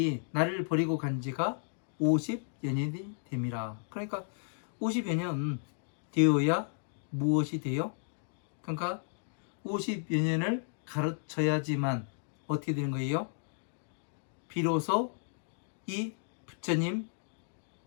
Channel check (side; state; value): right; silent; digital silence